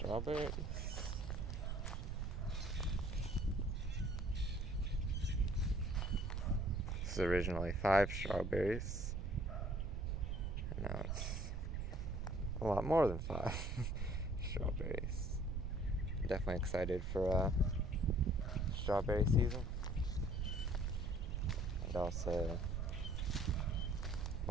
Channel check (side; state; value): right; noise; rumble, 2 dB below the sound